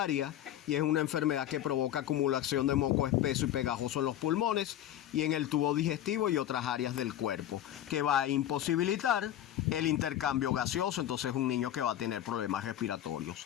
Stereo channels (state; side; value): quieter; right; 11.8 dB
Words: y es una enfermedad que provoca acumulación de moco espeso y pegajoso en los pulmones y en el tubo digestivo y otras áreas del cuerpo, que va a imposibilitar el intercambio gaseoso. Entonces, un niño que va a tener problemas respiratorios.